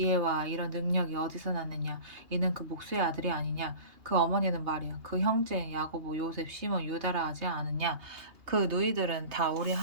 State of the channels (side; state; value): left; late; 2.8 ms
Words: 이런 능력이 어디서 났느냐 이는 그 목수의 아들이 아니냐 그 어머니는 말이야 그 형제 야고보 요셉 시몬 유다라 하지 않느냐 그 누이들은 다 우리